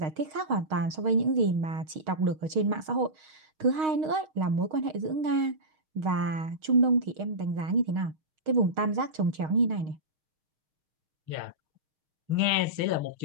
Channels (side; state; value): left; late; 6.4 ms